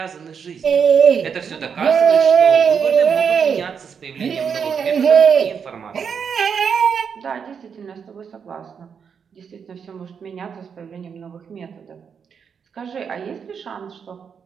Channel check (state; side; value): quieter; left; 6.8 dB